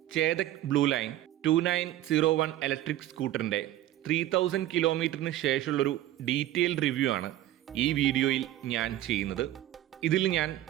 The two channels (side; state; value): left; quieter; 13.7 dB